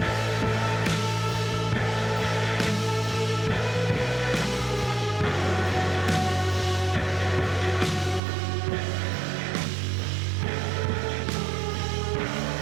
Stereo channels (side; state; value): left; drops out; at 8.2 s